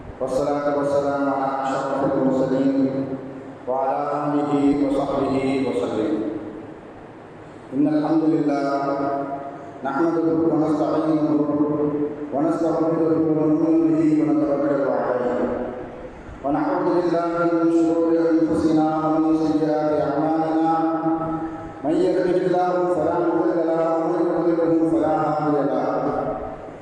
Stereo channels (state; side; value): identical; both; correlation 1.00